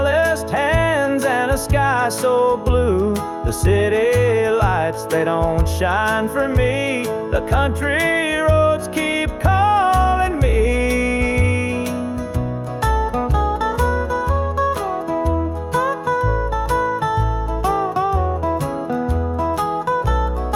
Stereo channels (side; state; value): both; identical; correlation 1.00